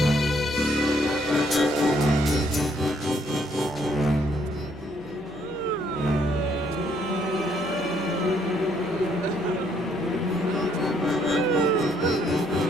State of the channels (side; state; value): left; noise; hum, 19 dB below the sound